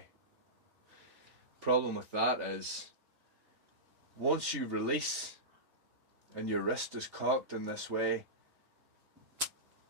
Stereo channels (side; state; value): left; late; 3.3 ms